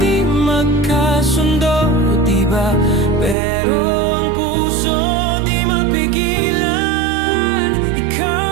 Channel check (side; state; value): left; drops out; at 3.4 s